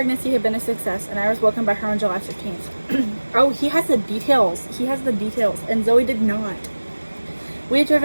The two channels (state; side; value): inverted; both; correlation -1.00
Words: had been a success, and I was welcomed by her on July 15th. Oh, he has the details. He has the details, and Zoe did not. We had